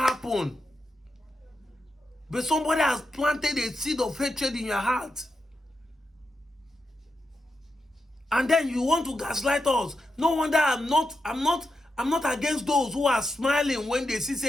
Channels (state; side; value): normal; both; correlation 0.87